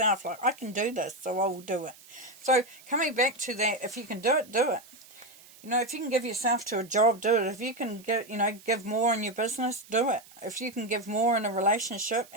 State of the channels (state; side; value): noise; right; hiss, 23 dB below the sound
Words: Like, I can do this, so I will do it. So coming back to that, if you can do it, do it. You know, if you can give yourself to a job, do it. If you can get, you know, give more in your business, do it. If you can give more in a relationship